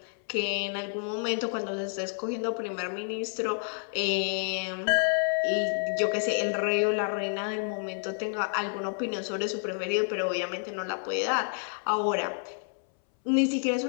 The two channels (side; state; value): right; silent; 58 dB below the other